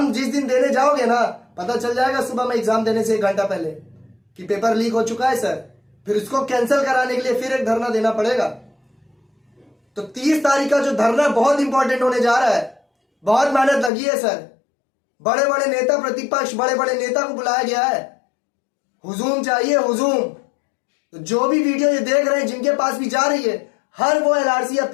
जिस दिन देने जाओगे ना, पता चल जाएगा सुबह में एग्जाम देने से 1 घंटा पहले कि पेपर लीक हो चुका है सर, फिर उसको कैंसिल कराने के लिए फिर एक धरना देना पड़ेगा। तो 30 तारीख का जो धरना बहुत इंपॉर्टेंट होने जा रहा है, बहुत मेहनत लगी है सर, बड़े बड़े नेता प्रतिपक्ष, बड़े बड़े नेता को बुलाया गया है, हुजूम चाहिए हुजूम। तो जो भी वीडियो ये देख रहे हैं, जिनके पास भी जा रही है, हर वो एलआरसी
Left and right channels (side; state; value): right; drops out; at 13.9 s